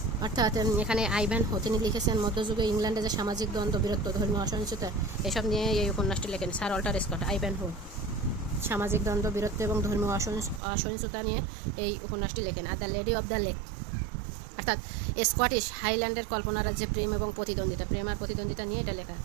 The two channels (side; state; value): left; drops out; at 10.6 s